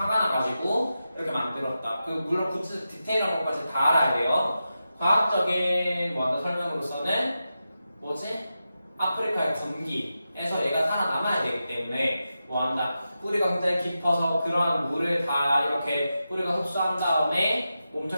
나가지고 이렇게 만들었다. 그 물론 구체 디테일한 것까지 다 알아야 돼요. 과학적인 뭐하다 설명으로서는 뭐지? 아프리카의 건기에서 얘가 살아남아야 되기 때문에 뭐한다? 뿌리가 굉장히 깊어서 그러한 물을 다 이렇게 뿌리가 흡수한 다음에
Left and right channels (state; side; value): inverted; both; correlation -0.90